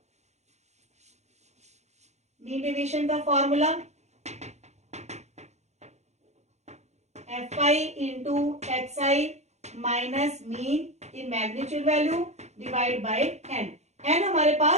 मीन डेविएशन का formula fi into xi minus mean in magnitude value divide by n, n हमारे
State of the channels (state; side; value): late; left; 0.33 ms